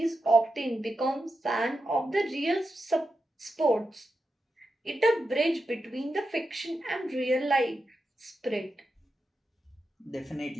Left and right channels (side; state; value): both; normal; correlation 0.88